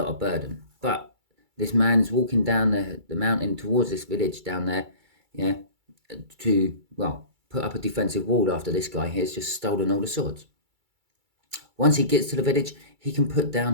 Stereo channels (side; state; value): left; late; 2.3 ms